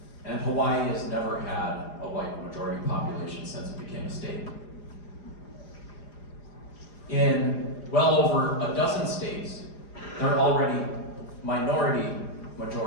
and Hawaii has never had a white majority population since it became a state. In well over a dozen states, they're already minority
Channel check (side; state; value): right; late; 4.9 ms